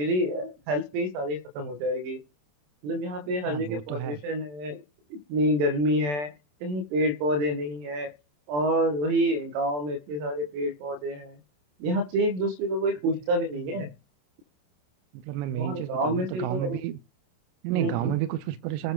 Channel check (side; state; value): left; late; 27 ms